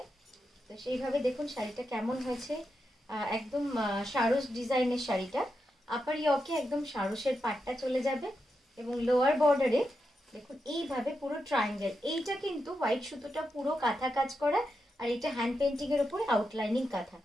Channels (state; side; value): normal; both; correlation 0.86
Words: তো সেইভাবে দেখুন শাড়িটা কেমন হয়েছে। একদম সারস ডিজাইনের শাড়িটা। আপার ইয়কে একদম সারসের পাটটা চলে যাবে এবং লোয়ার বর্ডারে দেখুন এইভাবে পুরো ট্রায়াঙ্গেল। এইটা কিন্তু হোয়াইট সুতোটা পুরো কাঁথা কাজ করা, আর এটা হ্যান্ড পেন্টিং এর উপরে আউটলাইনিং কাঁথা।